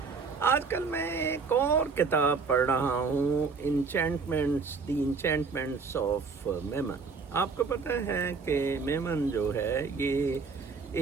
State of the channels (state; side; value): quieter; left; 4.9 dB